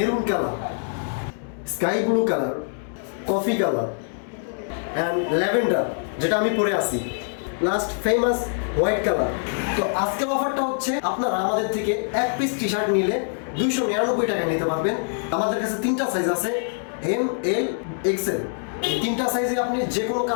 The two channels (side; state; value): right; silent; 61 dB below the other